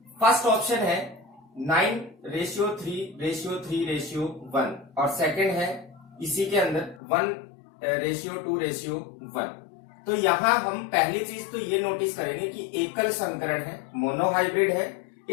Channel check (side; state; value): right; drops out; at 7.0 s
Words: फर्स्ट ऑप्शन है 9:3:3:1 और सेकंड है इसी के अंदर 1:2:1। तो यहां हम पहली चीज तो ये नोटिस करेंगे कि एकल संकरण है, मोनोहाइब्रिड है।